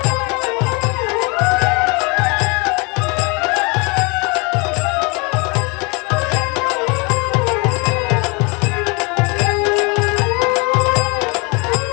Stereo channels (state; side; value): quieter; right; 29.5 dB